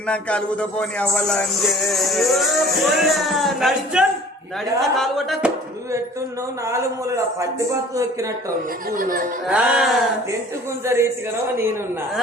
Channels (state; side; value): normal; both; correlation 0.49